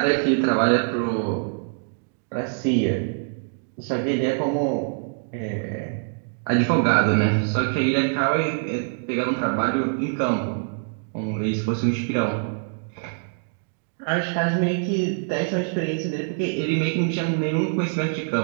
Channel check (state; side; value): silent; left; 62 dB below the other